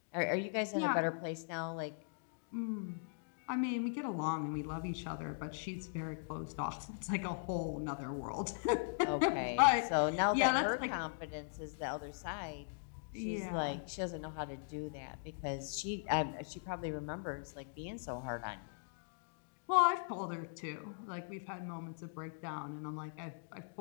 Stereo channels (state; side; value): silent; right; digital silence